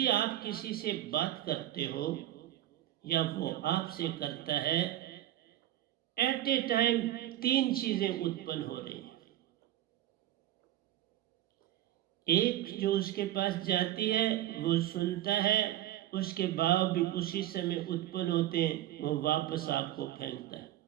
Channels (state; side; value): quieter; left; 13.3 dB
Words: आप किसी से बात करते हो या वो आपसे करता है, एट ए टाइम 3 चीजें उत्पन्न हो रही हैं। एक, जो उसके पास जाती है वो सुनता है, उसके भाव भी उसी समय उत्पन्न होते हैं, वो वापस आपको फेंकता है।